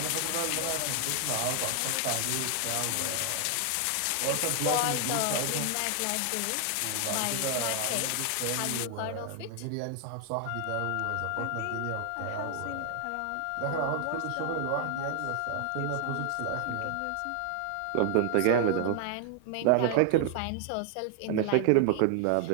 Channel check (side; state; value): both; different; correlation 0.00